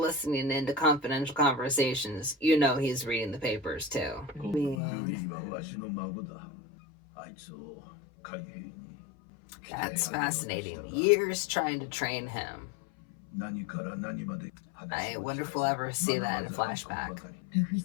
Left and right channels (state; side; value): drops out; right; at 4.8 s